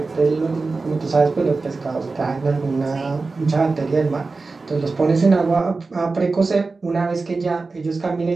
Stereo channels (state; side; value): quieter; left; 3.9 dB